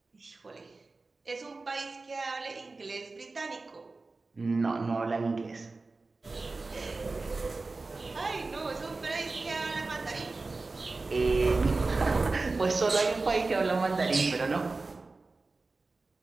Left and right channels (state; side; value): quieter; left; 3.6 dB